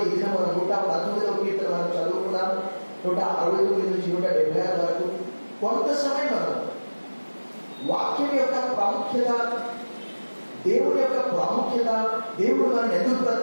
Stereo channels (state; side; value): inverted; both; correlation -1.00